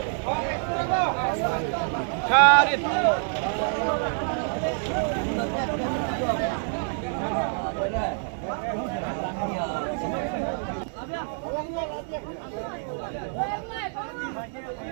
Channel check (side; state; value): left; silent; 60 dB below the other